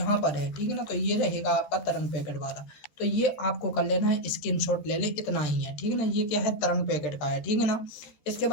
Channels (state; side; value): late; right; 13 ms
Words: पर है, ठीक है ना। तो ये रहेगा आपका तरंग पैकेट वाला। तो ये आपको कर लेना है, स्क्रीनशॉट ले ले, इतना ही है, ठीक है ना। ये क्या है, तरंग पैकेट का है, ठीक है ना। इसके